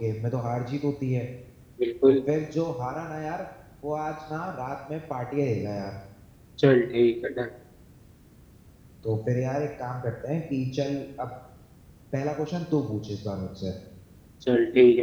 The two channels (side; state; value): both; identical; correlation 1.00